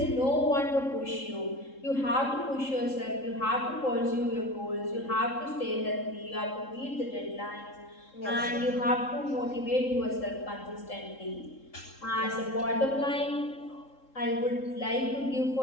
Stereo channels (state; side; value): late; right; 3.7 ms